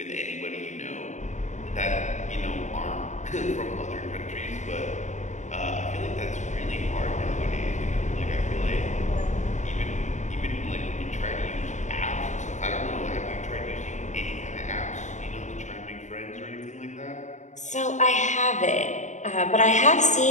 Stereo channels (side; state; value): right; late; 0.35 ms